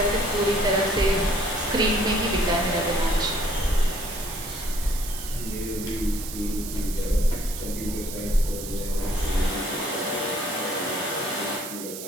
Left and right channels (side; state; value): right; noise; hiss, 9 dB below the sound